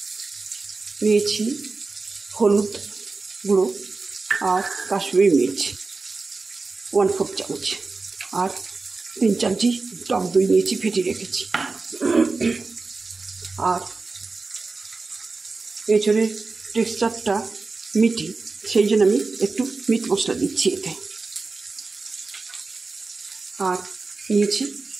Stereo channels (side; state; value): left; quieter; 3.9 dB